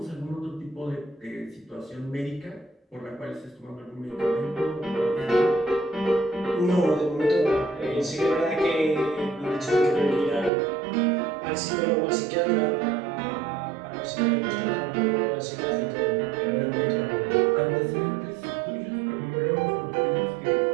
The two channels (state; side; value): drops out; left; at 10.5 s